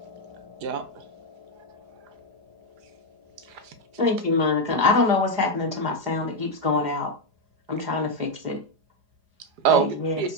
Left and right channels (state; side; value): late; left; 4.9 ms